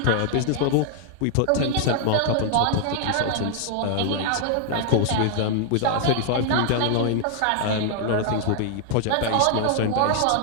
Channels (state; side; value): different; both; correlation 0.00